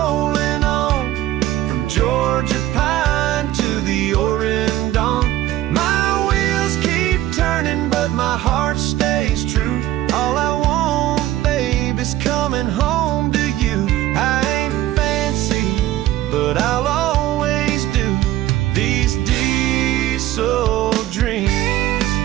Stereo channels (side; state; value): left; quieter; 14.5 dB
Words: on, from Georgia pine to the Oregon dawn. My wheels keep turning, but my heart stays true. All I want, babe, is coming home to you. I ain't fancy, but I'll always do these diesel dreams.